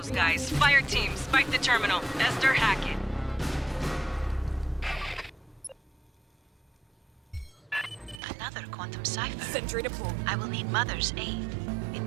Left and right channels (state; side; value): drops out; left; at 8.2 s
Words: guys. Fireteam, spike the terminal. Esther, hack it. Another quantum cipher. Sentry deployed. I will need Mother's aid. It